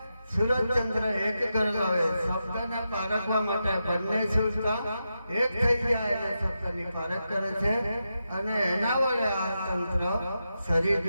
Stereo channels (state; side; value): inverted; both; correlation -0.88